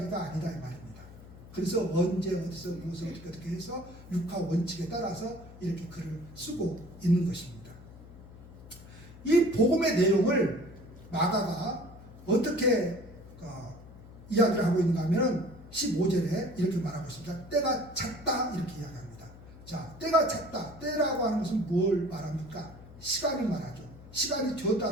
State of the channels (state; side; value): noise; left; hum, 18 dB below the sound